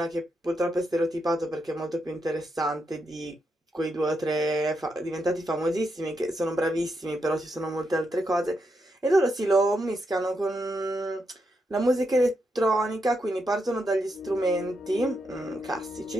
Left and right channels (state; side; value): normal; both; correlation 0.82